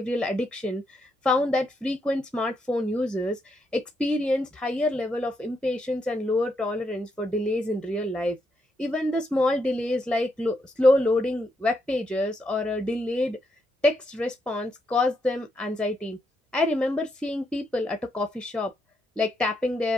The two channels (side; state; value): both; normal; correlation 0.80